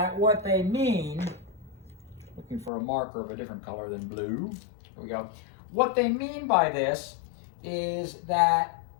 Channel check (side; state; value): right; drops out; at 2.7 s